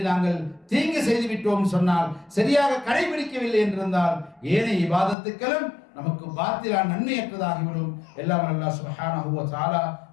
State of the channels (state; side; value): drops out; right; at 5.2 s